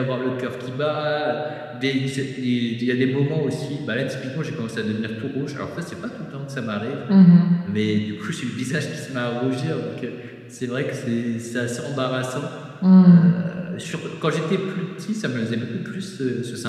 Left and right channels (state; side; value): identical; both; correlation 1.00